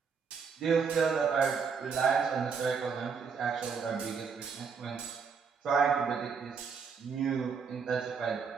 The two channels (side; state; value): left; quieter; 5.9 dB